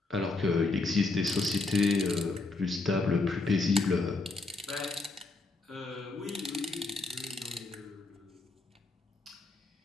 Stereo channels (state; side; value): quieter; right; 3.4 dB